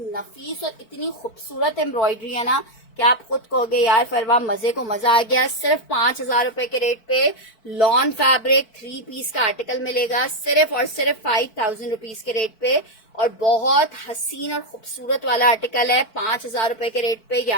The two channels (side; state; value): right; late; 4.5 ms